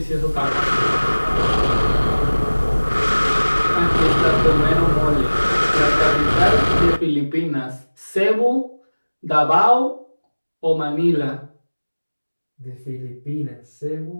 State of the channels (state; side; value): inverted; both; correlation -1.00